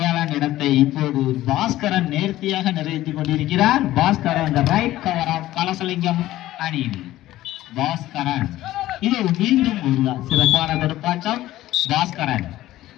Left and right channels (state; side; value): quieter; right; 15.2 dB